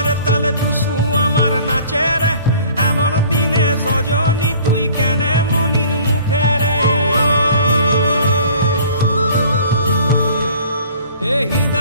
তালে টুসু আমার নাচে রে, এমন দিনে সজনী তুই কেনে মলিন মুখে রে। এই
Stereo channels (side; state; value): both; inverted; correlation -0.51